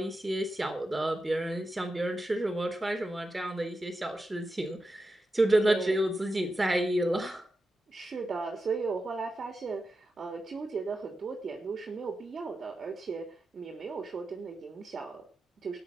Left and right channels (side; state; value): both; normal; correlation 0.90